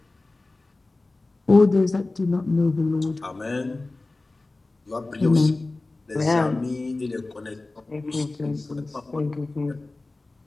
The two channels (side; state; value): right; quieter; 3.2 dB